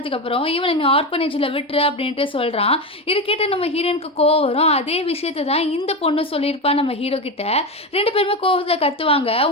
இவனை நீ ஆர்பனேஜில் விட்டுரு அப்படின்ட்டு சொல்கிறான். இது கேட்டு நம்ம ஹீரோயினுக்கு கோவம் வரும். அதே விஷயத்தை தான் இந்த பொண்ணு சொல்லியிருப்பா நம்ம ஹீரோ கிட்ட. 2 பேருமே கோவத்தில் கத்துவாங்க,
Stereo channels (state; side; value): normal; both; correlation 0.17